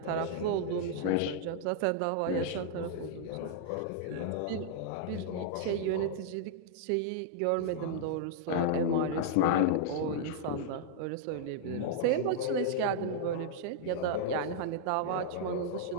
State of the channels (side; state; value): both; different; correlation -0.01